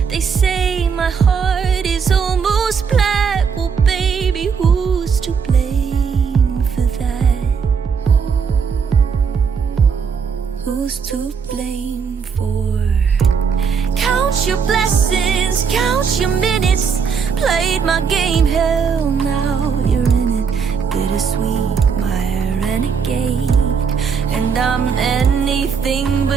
They say my heart is almost black. Well, baby, who's to blame for that? Who's to blame for? Count your blessings, count your minutes. Played my game, hell, now you're in it. Bittersweet, my renegade. And I'm anything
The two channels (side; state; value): left; quieter; 6.2 dB